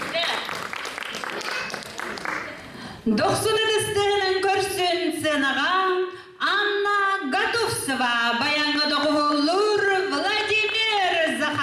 Doksun edistihinin görsün senağa, Anna Gatovsova, bayanı doğulur Vladimir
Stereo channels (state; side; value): identical; both; correlation 1.00